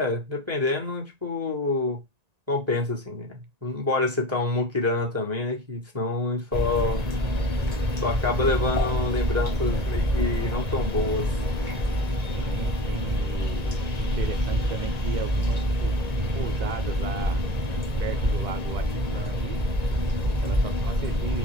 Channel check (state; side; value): late; left; 1.9 ms